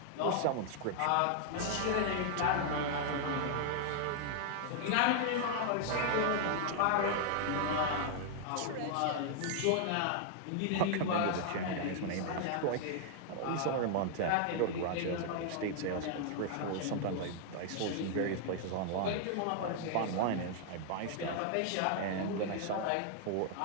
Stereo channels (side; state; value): both; different; correlation 0.00